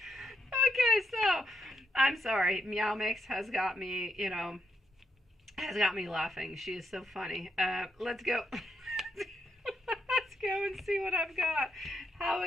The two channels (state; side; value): normal; both; correlation 0.80